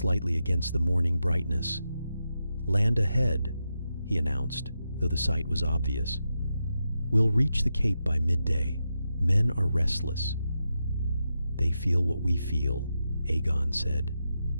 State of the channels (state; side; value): inverted; both; correlation -0.87